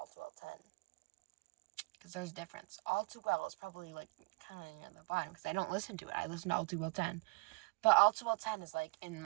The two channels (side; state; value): left; quieter; 26.0 dB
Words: Too Well 10? Because there's a difference. All Too Well is probably, like, kind of near the bottom, because I don't listen to it. I listen to All Too Well 10. But All Too Well 10 is, like, in